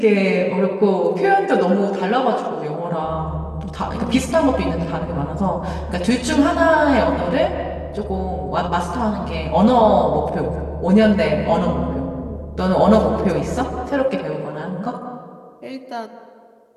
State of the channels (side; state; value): both; identical; correlation 1.00